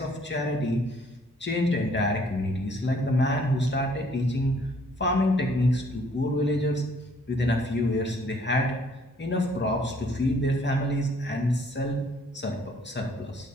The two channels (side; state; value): both; normal; correlation 0.62